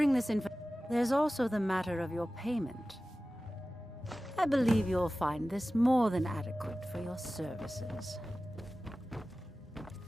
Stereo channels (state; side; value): normal; both; correlation 0.96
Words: this info... There's also the matter of your payment. I believe you'll find this more than adequate for your services.